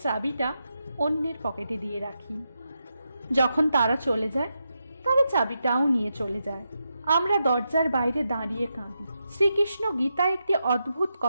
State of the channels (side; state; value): both; inverted; correlation -0.86